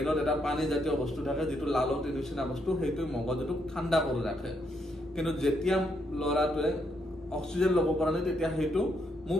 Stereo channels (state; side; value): normal; both; correlation 0.76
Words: এটা পানী জাতীয় বস্তু থাকে যিটো লালটিৰ নিচিনা বস্তু, সেইটোৱে মগজুটোক ঠাণ্ডা কৰি ৰাখে। কিন্তু যেতিয়া ল'ৰাটোৱে অক্সিজেন ল'ব পৰা নাই তেতিয়া সেইটো